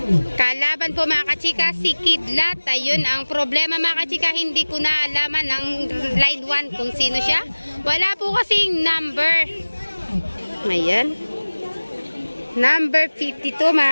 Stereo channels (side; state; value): both; inverted; correlation -1.00